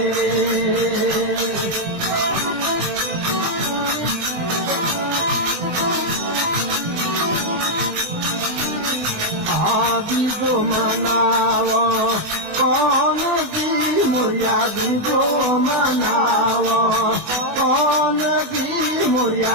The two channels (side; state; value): left; late; 20 ms